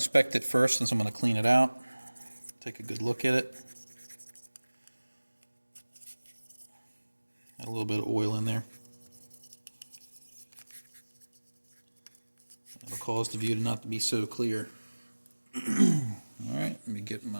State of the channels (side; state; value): both; inverted; correlation -1.00